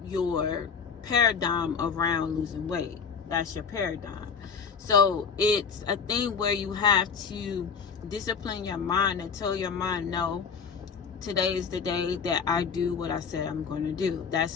your paradigm around losing weight. That's your paradigm. So it's a thing where you have to discipline your mind and tell your mind, no, today is the day that I do what I said I'm going to do.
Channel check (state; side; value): quieter; right; 6.2 dB